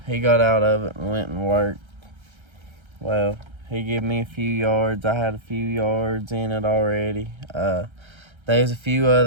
He got out of it and went and worked. Well, he gave me a few yards. I had a few yards in it already. There's a few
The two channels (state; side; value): late; left; 1.3 ms